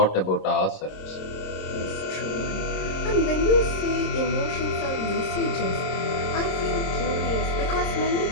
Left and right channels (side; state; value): right; late; 26 ms